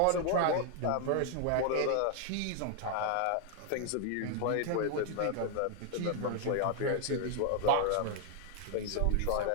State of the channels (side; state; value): both; different; correlation 0.00